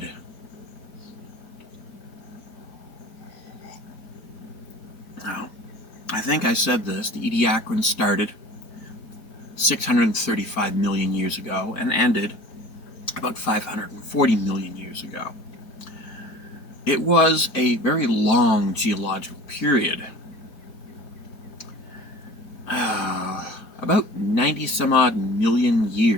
Now, I think I said this, the Ediacaran started 635 million years ago and ended about 540 million years ago. It was a very long geological period, about 90 some odd million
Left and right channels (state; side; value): late; right; 4.4 ms